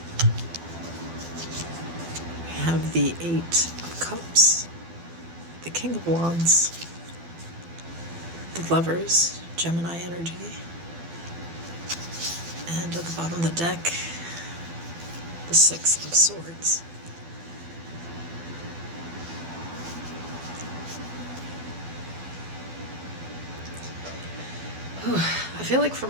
Have the Eight of Cups, the King of Wands, the Lovers, Gemini energy, and at the bottom of the deck, the Six of Swords. I feel like for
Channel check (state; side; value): late; left; 12 ms